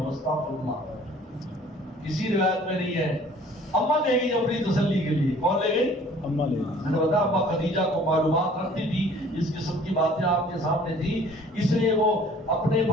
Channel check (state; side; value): normal; both; correlation 0.53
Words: استغفر اللہ، کسی روایت میں نہیں ہے۔ اما لے گئی اپنی تسلی کے لیے، کون لے گئی؟ اما لے گئی۔ میں نے بتایا اما خدیجہ کو معلومات رکھتی تھی، اس قسم کی باتیں آپ کے سامنے تھی، اس لیے وہ اپنے